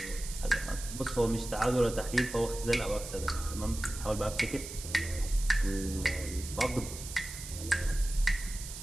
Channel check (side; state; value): right; noise; hiss, 10 dB below the sound